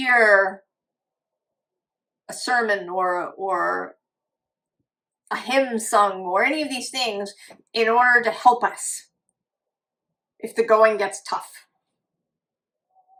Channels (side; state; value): both; identical; correlation 1.00